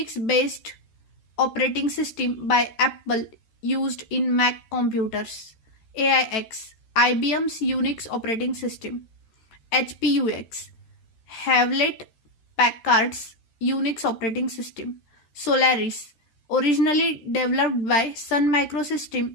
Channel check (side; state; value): right; late; 14 ms